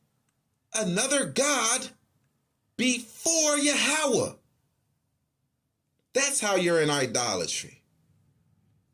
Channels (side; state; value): both; identical; correlation 1.00